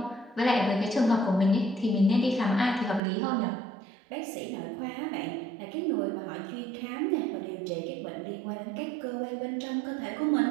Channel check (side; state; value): left; drops out; at 3.0 s